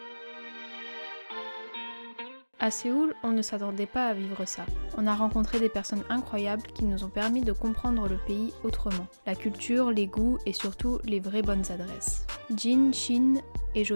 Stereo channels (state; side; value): inverted; both; correlation -1.00